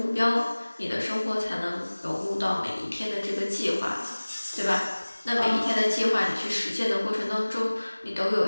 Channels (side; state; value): both; inverted; correlation -1.00